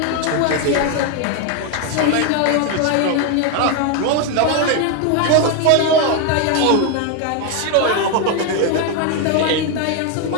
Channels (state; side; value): different; both; correlation 0.01